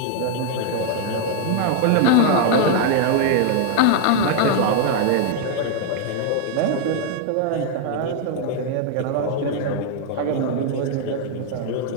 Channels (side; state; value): both; different; correlation 0.00